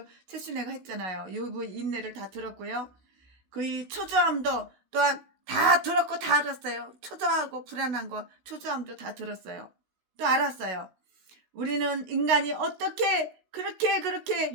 최순애가 했잖아요. 욥의 인내를 다 들었고요. 그의 초조함도 또한 다 들었고 다 알았어요. 초조하고 불안한 거 초조함도 다 들었어요. 또 알았어요. 우리는 인간이 어떻게 그렇게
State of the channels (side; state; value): left; late; 16 ms